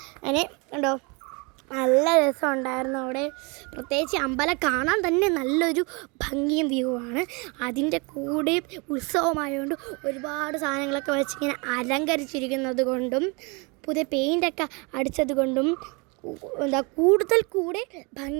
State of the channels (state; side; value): quieter; left; 29.9 dB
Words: അതിന് കണ്ടോ നല്ല രസമുണ്ടായിരുന്നു അവിടെ. പ്രത്യേകിച്ച് അമ്പലം കാണാൻ തന്നെ നല്ലൊരു ഭംഗിയും വ്യൂ ആണ്. അതിൻ്റെ കൂടെ ഉത്സവമായതുകൊണ്ട് ഒരുപാട് സാധനങ്ങളൊക്കെ വെച്ചിങ്ങനെ അലങ്കരിച്ചിരിക്കുന്നത് കൊണ്ടും പുതിയ പെയിൻ്റൊക്കെ അടിച്ചത് കൊണ്ടും കൂടുതൽ കൂടെ